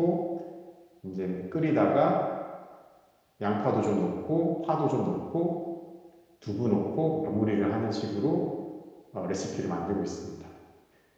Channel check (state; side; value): identical; both; correlation 1.00